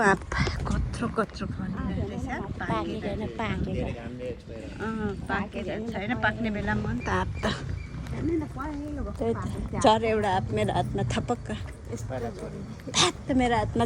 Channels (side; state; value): both; identical; correlation 1.00